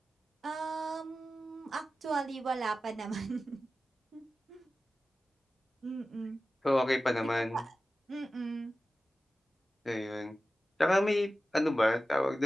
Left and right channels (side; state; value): both; normal; correlation 0.94